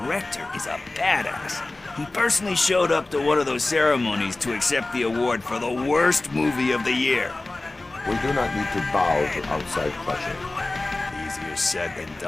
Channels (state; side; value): quieter; right; 3.0 dB